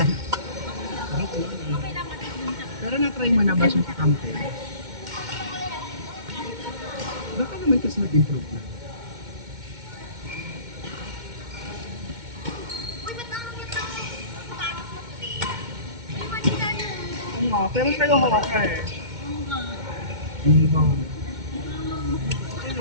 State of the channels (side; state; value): left; late; 2.1 ms